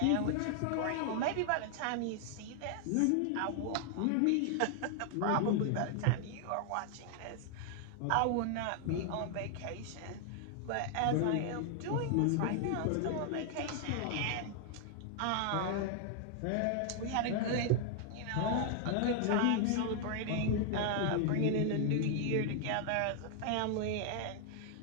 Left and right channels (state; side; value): different; both; correlation 0.00